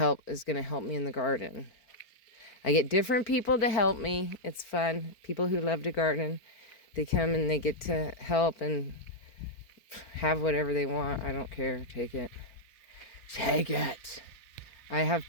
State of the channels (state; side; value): late; right; 4.4 ms